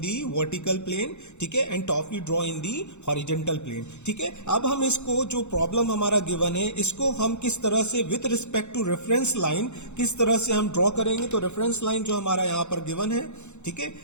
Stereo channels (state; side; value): late; right; 0.83 ms